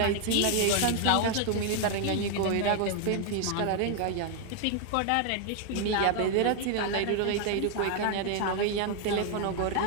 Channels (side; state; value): both; different; correlation 0.00